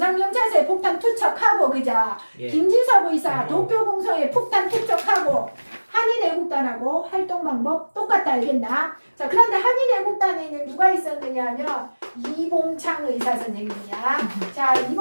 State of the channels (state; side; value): inverted; both; correlation -1.00